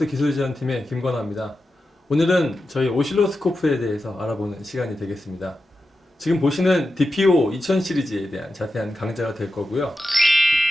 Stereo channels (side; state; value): both; normal; correlation 0.91